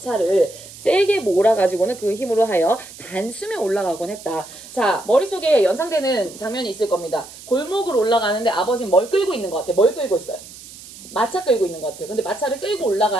세게 몰아가지고는 그 힘으로 하여 단숨에 올라가곤 했다. 자, 머릿속에 연상되는 장면이 있을 겁니다. 골목을 올라가는데 아버지는 뭘 끌고 있는 것 같아요. 뭘 끌고 있어요? 마차 끌고 있는 것 같아요. 근데 마차를 끌고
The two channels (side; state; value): right; noise; hiss, 17 dB below the sound